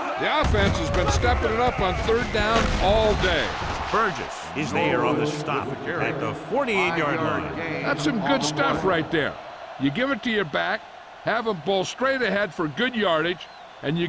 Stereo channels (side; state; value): both; identical; correlation 1.00